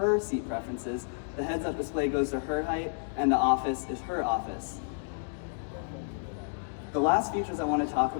seat preferences, the heads-up display goes to her height, and the office is her office. The last features I want to talk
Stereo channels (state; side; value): silent; right; digital silence